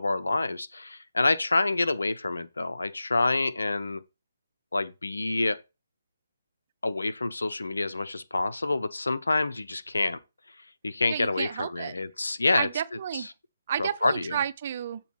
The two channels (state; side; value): inverted; both; correlation -0.91